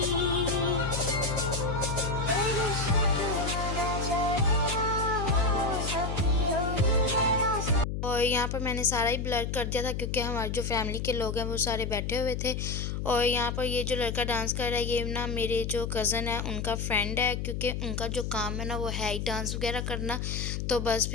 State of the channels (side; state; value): left; noise; hum, 3 dB below the sound